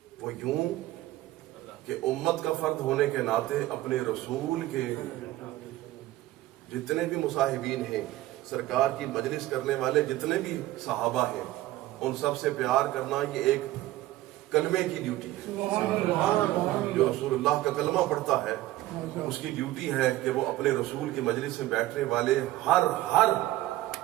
وہ یوں کہ امت کا فرد ہونے کے ناطے اپنے رسول کے جتنے بھی مصاحبین ہیں، سرکار کی مجلس کرنے والے جتنے بھی صحابہ ہیں، ان سب سے پیار کرنا یہ ایک کلمے کی ڈیوٹی ہے. جو رسول اللہ کا کلمہ پڑھتا ہے اس کی ڈیوٹی ہے کہ وہ اپنے رسول کی مجلس میں بیٹھنے والے ہر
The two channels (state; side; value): quieter; left; 16.1 dB